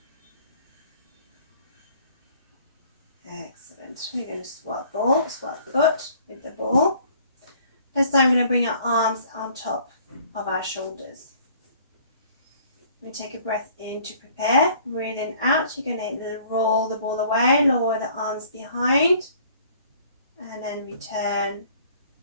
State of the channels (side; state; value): both; inverted; correlation -0.55